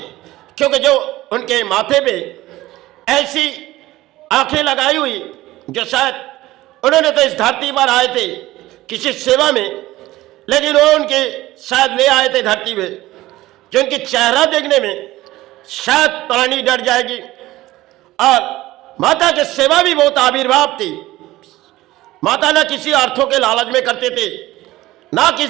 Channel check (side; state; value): left; quieter; 17.2 dB